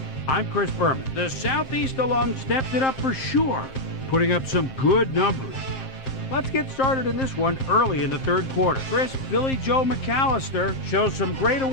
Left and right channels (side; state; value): right; late; 7.5 ms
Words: I'm Chris Berman. The Southeast alum stepped it up for sure, putting up some good numbers. Let's get started in this one early in the third quarter. Chris Billy Joe McAllister shows some great